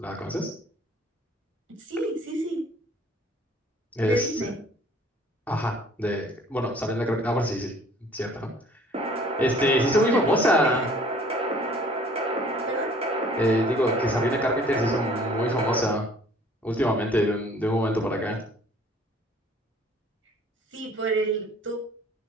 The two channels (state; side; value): normal; both; correlation 0.54